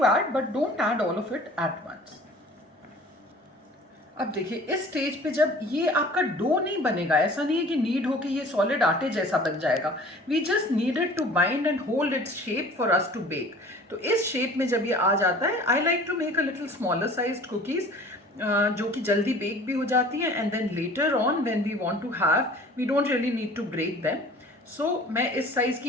add but don't add all of it at once. अब देखिए इस स्टेज पे जब ये आपका डो नहीं बनेगा, ऐसा नहीं है कि नीड हो कि ये सॉलिड आटे जैसा बन जाएगा। We just needed to bind and hold its shape for us to bake. तो इस शेप में जब ये आ जाता है, I like to make a little smaller sized cookies जो कि जल्दी बेक भी हो जाती हैं, and then later on when we want to have, we don't really need to break them. So मैं इस साइज़ की,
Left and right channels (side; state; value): both; normal; correlation 0.46